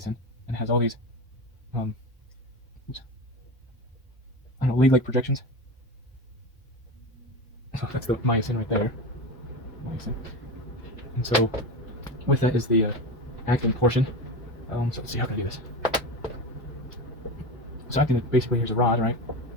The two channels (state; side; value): normal; both; correlation 0.23